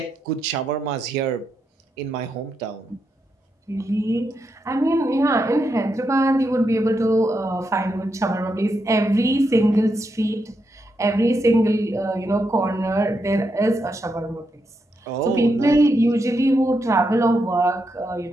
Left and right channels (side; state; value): both; normal; correlation 0.83